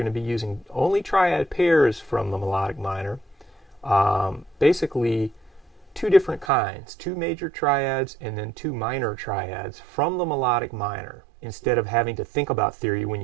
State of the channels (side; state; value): left; drops out; at 6.5 s